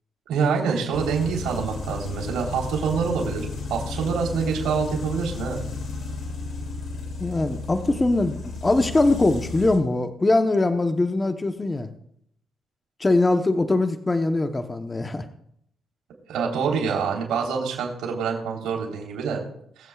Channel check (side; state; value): both; normal; correlation 0.83